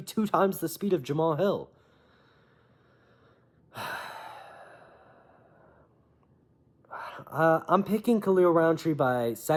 2 times the speed of Jamal Hill. I'm picking Khalil Roundtree by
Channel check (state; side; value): identical; both; correlation 1.00